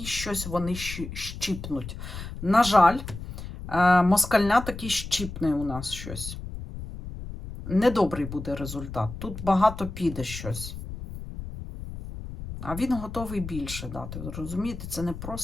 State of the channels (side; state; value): left; noise; rumble, 10 dB below the sound